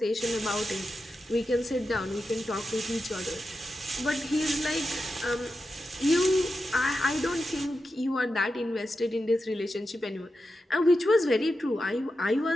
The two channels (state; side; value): normal; both; correlation 0.90